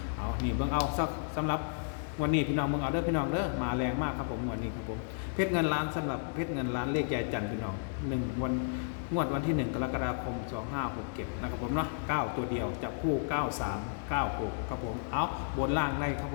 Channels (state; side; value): silent; right; digital silence